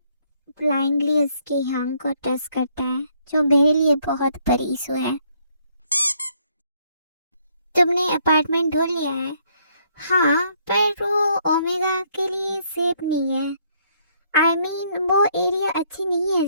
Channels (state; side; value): inverted; both; correlation -0.69